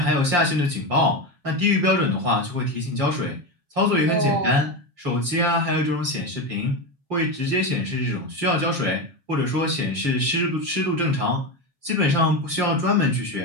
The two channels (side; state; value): left; late; 7.3 ms